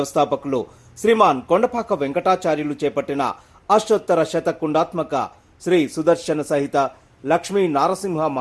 శ్రీమాన్ కొండపాక వెంకటాచార్యులు చేపట్టిన అష్టోత్తర శతకుండాత్మక శ్రీ సుదర్శన సహిత లక్ష్మీ నారసింహ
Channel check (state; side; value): identical; both; correlation 1.00